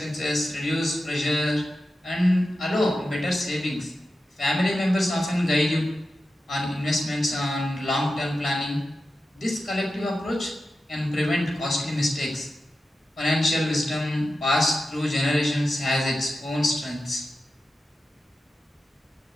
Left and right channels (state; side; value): normal; both; correlation 0.92